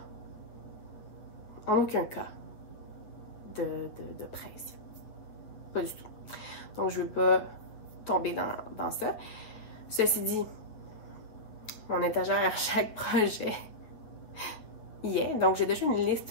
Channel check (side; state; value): right; late; 9.0 ms